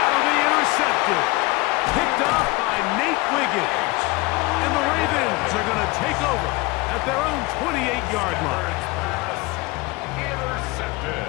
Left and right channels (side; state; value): right; quieter; 23.2 dB